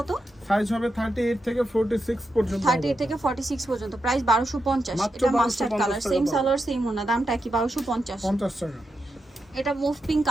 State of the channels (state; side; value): normal; both; correlation 0.86